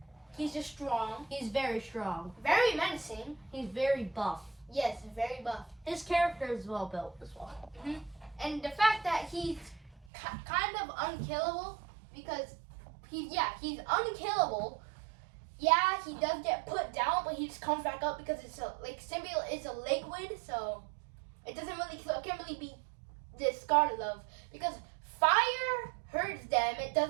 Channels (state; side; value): drops out; left; at 10.1 s